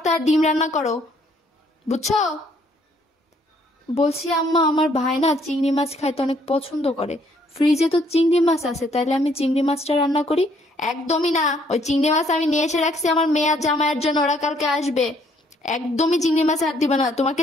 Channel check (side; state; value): both; normal; correlation 0.66